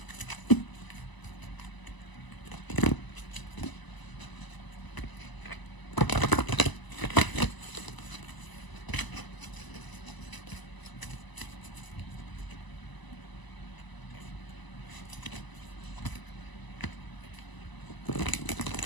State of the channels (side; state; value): right; late; 1.0 ms